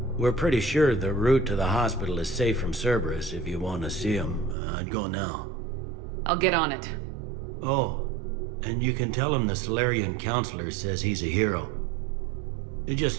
We're pretty sure the route to the hospital is safe from Cerberus. If you want to see him, I'd go now. I'll get on it. Oh, and you can tell him the Solarian counselor says he's a hero. It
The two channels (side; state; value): left; drops out; at 4.5 s